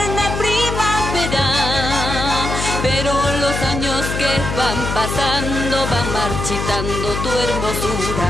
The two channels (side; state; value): left; noise; hum, 4 dB below the sound